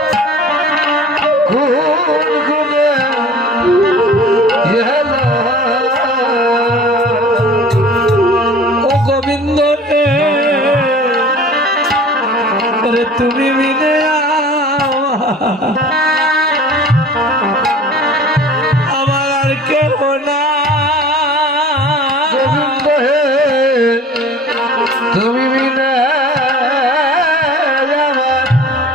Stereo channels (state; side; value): normal; both; correlation 0.44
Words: ও গোবিন্দ রে, ওরে তুমি বিনে আমার আর কেহ না। গোবিন্দ হে তুমি বিনা